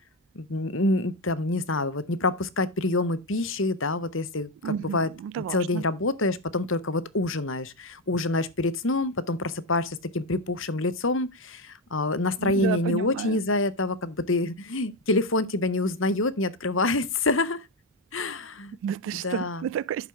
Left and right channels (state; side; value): normal; both; correlation 0.11